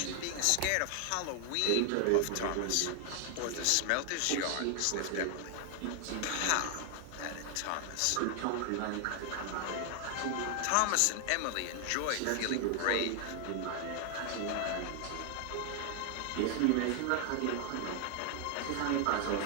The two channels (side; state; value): both; different; correlation 0.00